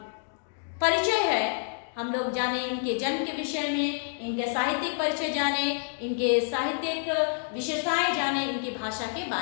परिचय है। हम लोग जाने इनके जन्म के विषय में, इनके साहित्यिक परिचय जाने, इनके साहित्यिक विशेषताएं जाने, इनकी भाषा के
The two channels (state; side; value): silent; right; digital silence